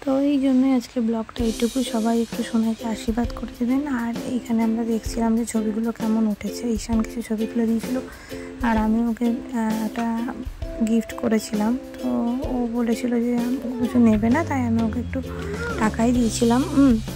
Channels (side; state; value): both; identical; correlation 1.00